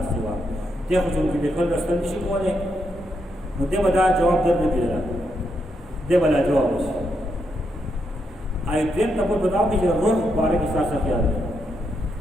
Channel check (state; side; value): normal; both; correlation 0.81